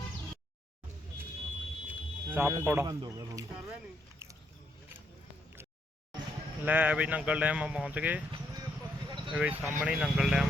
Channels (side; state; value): both; normal; correlation 0.75